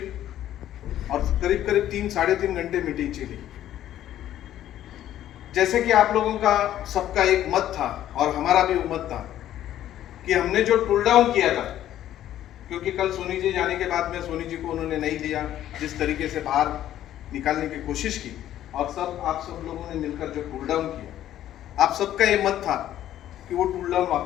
और करीब करीब 3-3.5 घंटे मीटिंग चली। जैसे कि आप लोगों का सबका एक मत था और हमारा भी मत था कि हमने जो टूल डाउन किया था, क्योंकि कल सोनी जी जाने के बाद में सोनी जी को उन्होंने नहीं दिया, जिस तरीके से बाहर निकालने की कोशिश की, और आप सब लोगों ने मिलकर जो टूल डाउन किया, आप सबका ये मत था कि वो टूल डाउन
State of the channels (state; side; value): quieter; right; 12.2 dB